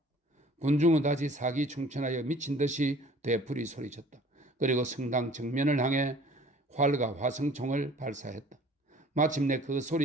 군중은 다시 사기 충천하여 미친 듯이 되풀이 소리쳤다. 그리고 성당 정면을 향해 활과 화성총을 발사했다. 마침내 그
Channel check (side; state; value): both; normal; correlation 0.51